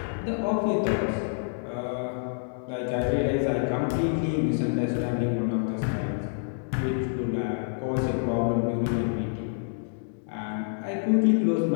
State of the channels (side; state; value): right; silent; digital silence